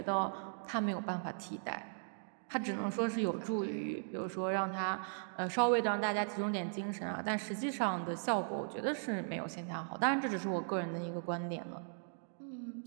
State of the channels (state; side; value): silent; left; digital silence